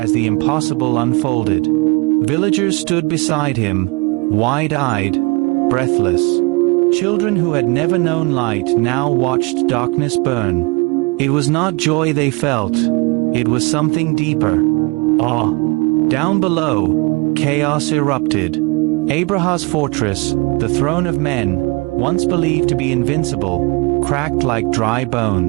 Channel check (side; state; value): left; quieter; 28.4 dB